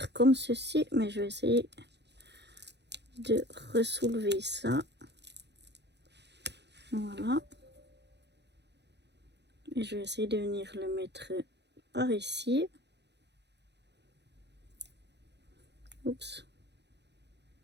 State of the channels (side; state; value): left; late; 0.50 ms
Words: comme ceci, mais je vais essayer de ressoulever ça. Voilà. Et je vais essayer de venir le mettre par ici. Oups.